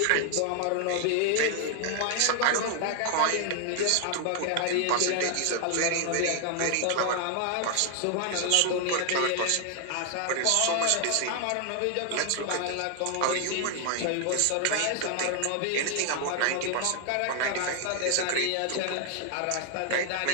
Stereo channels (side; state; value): both; different; correlation 0.00